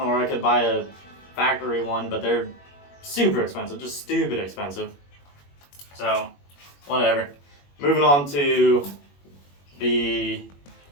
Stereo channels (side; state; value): right; late; 21 ms